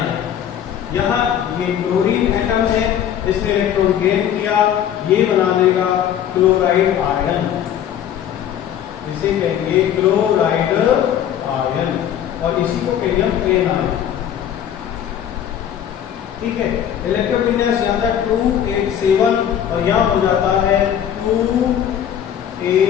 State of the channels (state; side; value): quieter; right; 9.8 dB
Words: यहाँ ये क्लोरीन एटम है, इसने इलेक्ट्रॉन गेन किया, ये बना देगा क्लोराइड आयन, इसे कहेंगे क्लोराइड आयन, और इसी को कहेंगे हम एनायन। ठीक है, इलेक्ट्रोविन्यास यहाँ था 287 और यहाँ हो जाता है